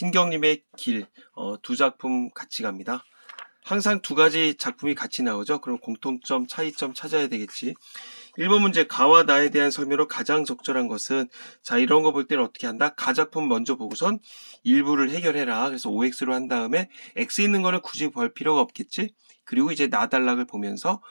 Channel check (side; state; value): both; inverted; correlation -1.00